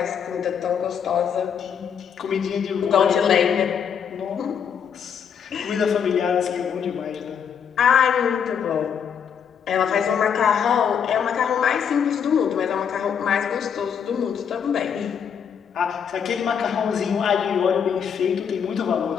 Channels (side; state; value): right; quieter; 7.6 dB